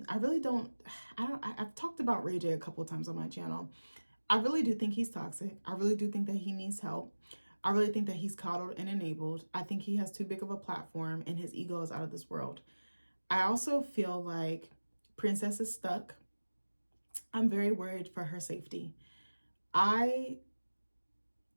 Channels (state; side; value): inverted; both; correlation -1.00